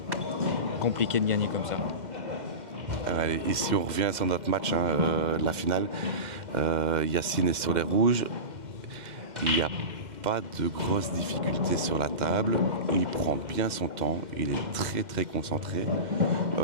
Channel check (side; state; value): left; late; 2.1 ms